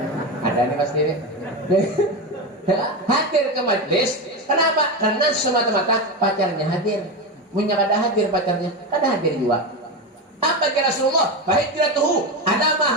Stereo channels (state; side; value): normal; both; correlation 0.17